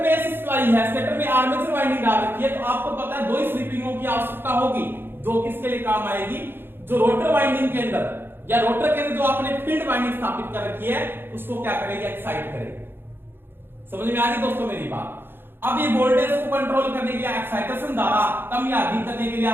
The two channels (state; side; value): late; left; 0.10 ms